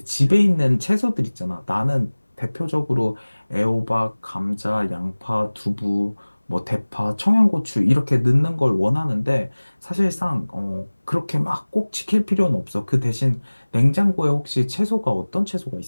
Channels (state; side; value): inverted; both; correlation -1.00